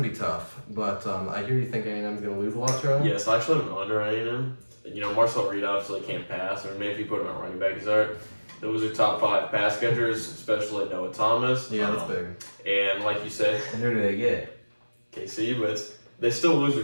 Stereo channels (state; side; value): inverted; both; correlation -1.00